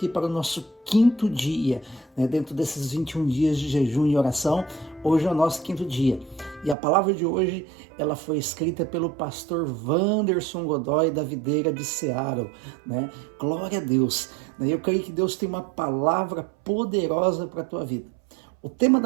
para o nosso 5º dia, né? Dentro desses 21 dias de jejum e oração, hoje é o nosso 5º dia. E a palavra de hoje, ela foi escrita pelo pastor Wanderson Godoy, da Videira de Seattle, né? Glória a Deus, né? Eu creio que Deus tem uma palavra poderosa para a tua vida. O tema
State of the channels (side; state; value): left; drops out; at 6.8 s